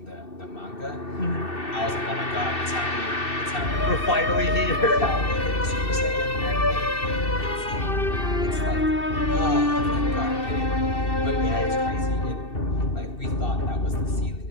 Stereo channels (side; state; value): right; late; 2.7 ms